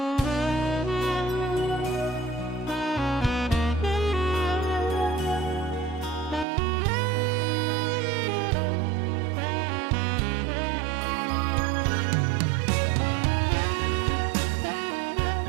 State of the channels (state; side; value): drops out; left; at 6.5 s